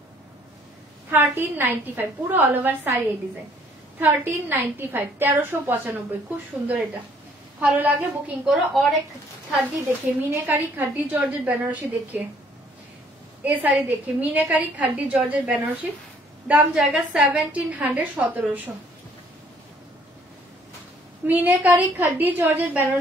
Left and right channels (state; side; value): normal; both; correlation 0.61